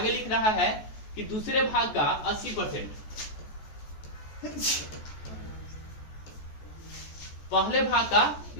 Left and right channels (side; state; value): right; late; 14 ms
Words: लिख रहा है कि दूसरे भाग का 80%, पहले भाग का